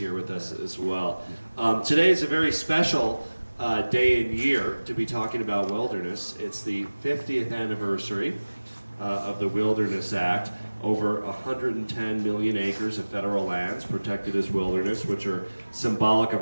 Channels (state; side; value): inverted; both; correlation -1.00